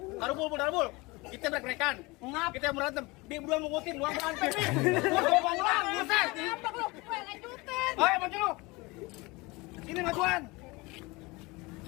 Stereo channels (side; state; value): right; quieter; 24.2 dB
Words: Darubul. Kita break-breakan. Ngap. Kita berantem. Dia berdua mengutin, luang berantem. Gua ngomong ulang, buset. Apa lu? Gue lanjutin. Ayo maju lu. Sini majuan.